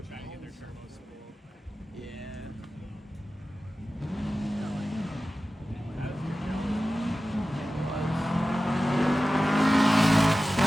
try to get their turbos spooled. Yeah.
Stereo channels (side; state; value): both; normal; correlation 0.95